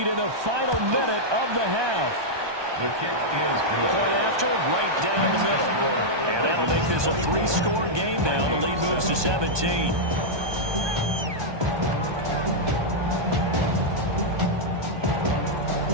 in the final minute of the half. The kick is good. Point after, right down the middle. And that'll make this a 3-score game now. The lead moves to 17.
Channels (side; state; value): left; late; 1.2 ms